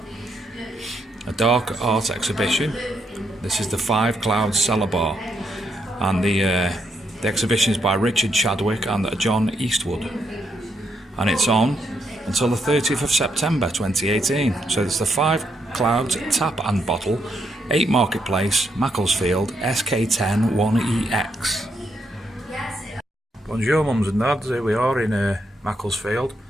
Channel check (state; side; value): normal; both; correlation 0.78